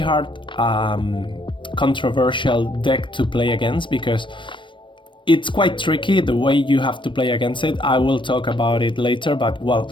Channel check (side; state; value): right; late; 0.24 ms